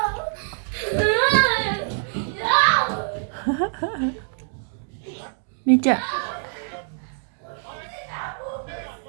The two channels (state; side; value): silent; left; 62 dB below the other